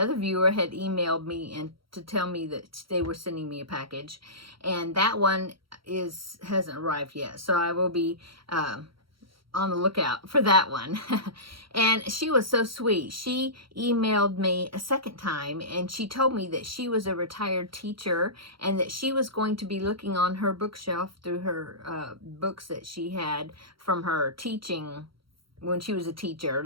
viewer had emailed me and to tell me that they were sending me a package, and that one hasn't arrived yet. So I will be on the lookout for that one. And she was so sweet. She emailed me a second time, and she told me that she was a retired teacher and that she was going to be looking on her bookshelf through her books that she had from her teaching when she was a teacher,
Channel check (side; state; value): left; late; 0.74 ms